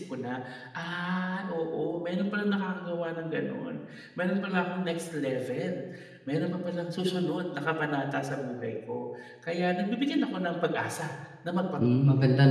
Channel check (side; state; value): both; identical; correlation 1.00